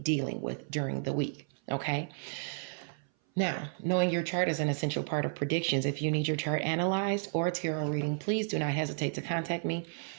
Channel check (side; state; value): left; silent; 56 dB below the other